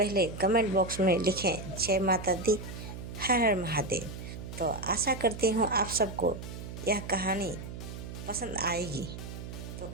कमेंट बॉक्स में लिखें जय माता दी, हर हर महादेव। तो आशा करती हूँ आप सबको यह कहानी पसंद आएगी। तो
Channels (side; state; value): right; noise; hum, 10 dB below the sound